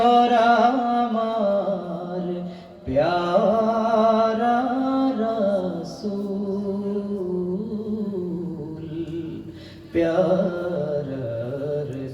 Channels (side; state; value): both; identical; correlation 1.00